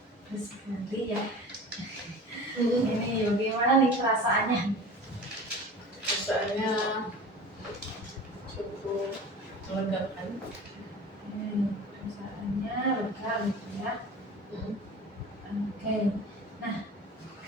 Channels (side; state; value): both; normal; correlation 0.38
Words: Terus sekali ya. Ini bagaimana nih perasaannya? Perasaannya cukup melegakan. Perasaannya lega gitu ya. Oke. Nah,